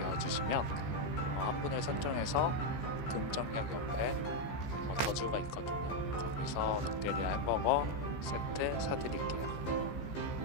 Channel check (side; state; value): right; late; 15 ms